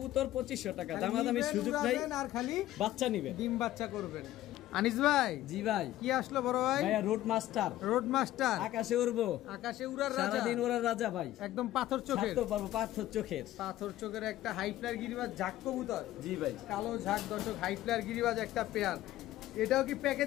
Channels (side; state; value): right; quieter; 14.5 dB